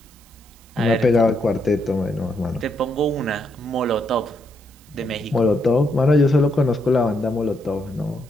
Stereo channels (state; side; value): noise; right; hiss, 27 dB below the sound